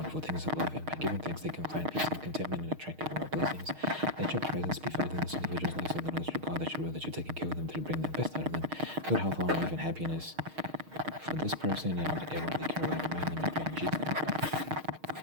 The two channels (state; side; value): late; left; 6.4 ms